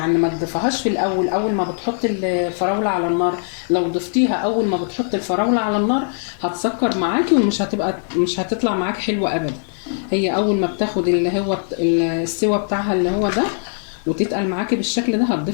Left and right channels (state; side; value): silent; right; digital silence